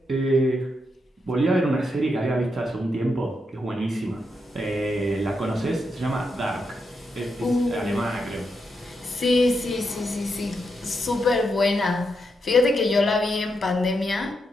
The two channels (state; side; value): normal; both; correlation 0.83